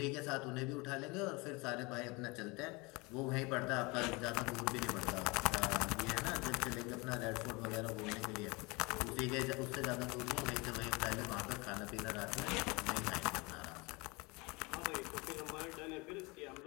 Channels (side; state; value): right; quieter; 26.3 dB